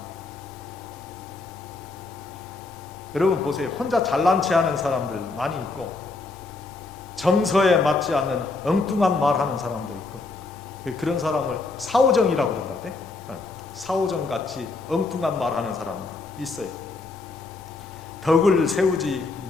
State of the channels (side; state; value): right; quieter; 3.7 dB